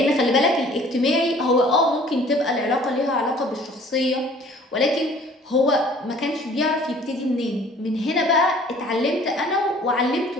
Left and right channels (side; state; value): both; normal; correlation 0.52